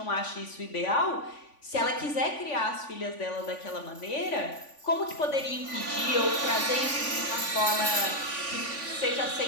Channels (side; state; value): right; late; 3.5 ms